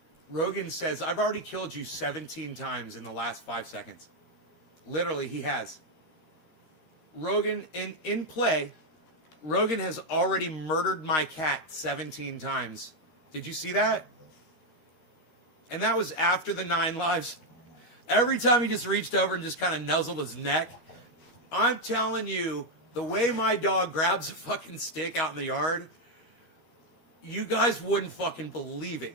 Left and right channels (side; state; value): right; late; 13 ms